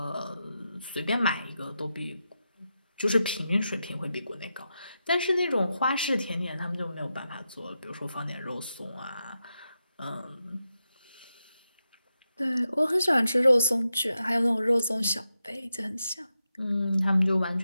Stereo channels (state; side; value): inverted; both; correlation -0.88